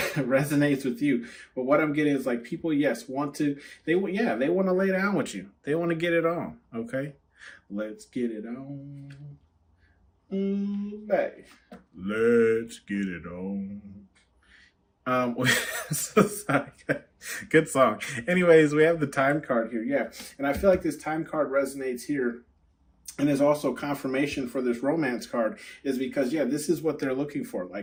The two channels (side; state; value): both; identical; correlation 1.00